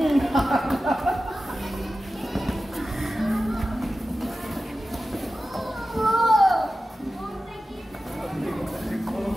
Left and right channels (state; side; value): normal; both; correlation 0.94